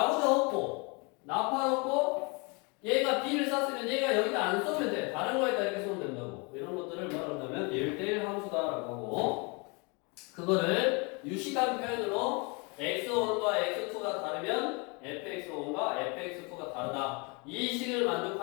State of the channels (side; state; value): right; quieter; 30.7 dB